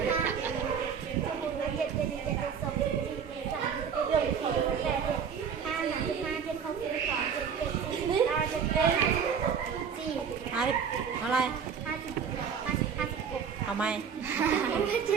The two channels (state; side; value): quieter; left; 7.0 dB